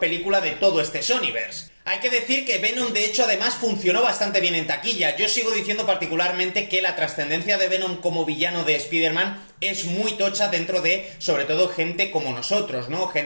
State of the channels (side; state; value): both; inverted; correlation -1.00